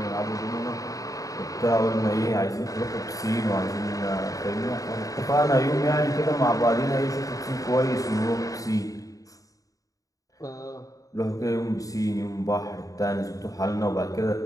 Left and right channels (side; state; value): right; late; 0.17 ms